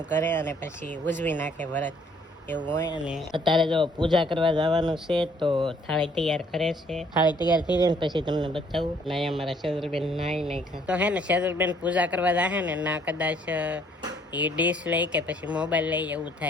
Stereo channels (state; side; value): normal; both; correlation 0.63